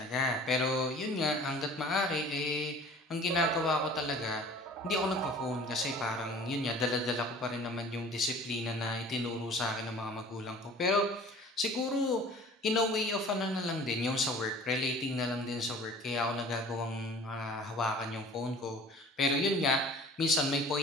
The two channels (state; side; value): normal; both; correlation 0.46